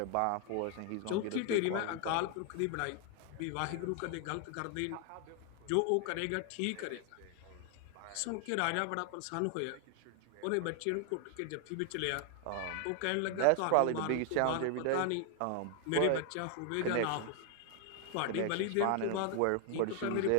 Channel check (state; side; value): different; both; correlation 0.00